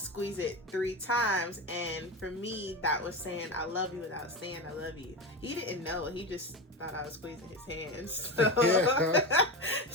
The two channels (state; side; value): normal; both; correlation 0.20